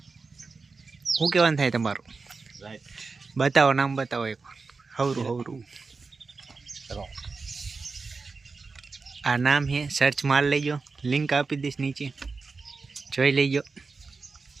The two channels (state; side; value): quieter; left; 4.3 dB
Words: શું કહેવાનું થાય તમારું? બતાવો, નામ બતાવો એક. હવરું. આ નામ છે, સર્ચ માર લેજો. લિંક આપી દઈશ નીચે, જોઈ લેજો.